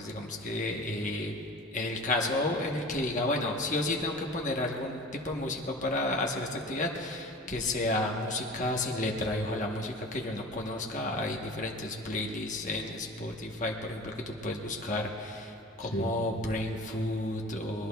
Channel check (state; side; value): normal; both; correlation 0.38